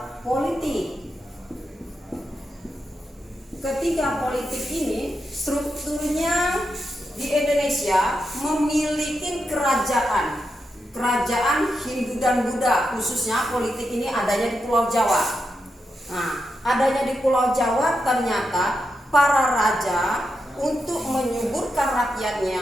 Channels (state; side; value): normal; both; correlation 0.86